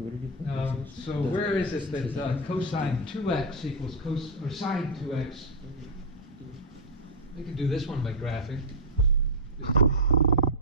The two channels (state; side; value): normal; both; correlation -0.03